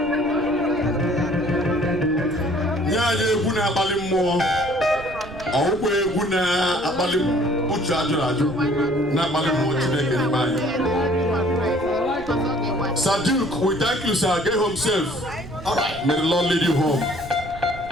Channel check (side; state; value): right; noise; rumble, 16 dB below the sound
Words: Yeah, guna abalim mo. Owe guna abalim uchu ajuraju. Na abalim mo chineke nibayi. Sir Duke, we thank you, sir. Get home safe. All right. May the Lord lead you home.